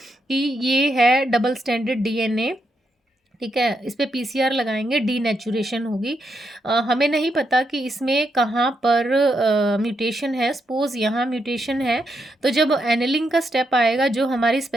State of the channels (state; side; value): normal; both; correlation 0.81